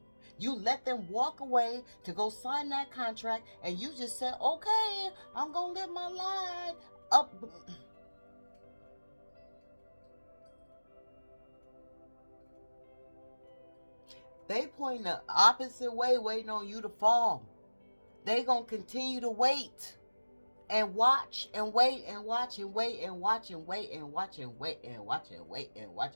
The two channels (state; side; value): inverted; both; correlation -1.00